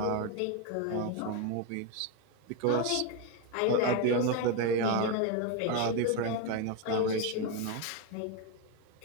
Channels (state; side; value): different; both; correlation 0.02